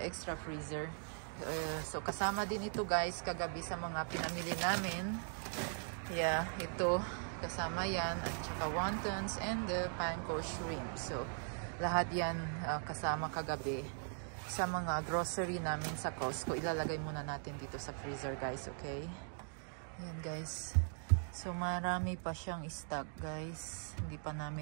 extra freezer. So kasama din ito guys kagabi sa mga pinamili namin. Yeah, ito kasama yan at saka wontons and the panko shrimp. So lahat yan kasama kagabi sa mga grocery namin sa Costco. Ilalagay muna natin dito sa freezer guys, okay? Ayan guys. So marami pa siyang stock guys. Hindi pa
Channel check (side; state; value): left; silent; 51 dB below the other